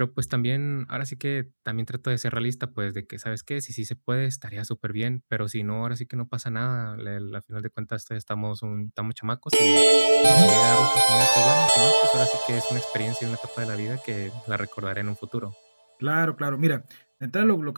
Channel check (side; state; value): both; inverted; correlation -1.00